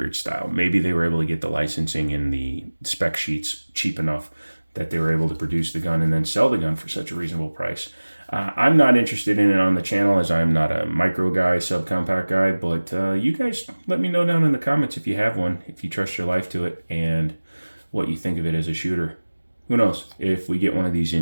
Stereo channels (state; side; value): inverted; both; correlation -1.00